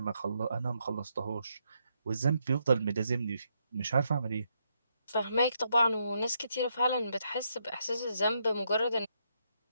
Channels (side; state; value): both; inverted; correlation -0.77